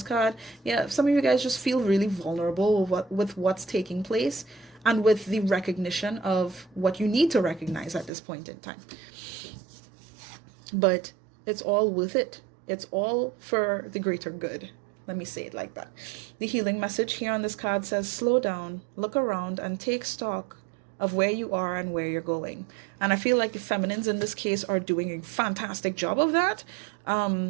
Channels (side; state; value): left; drops out; at 8.1 s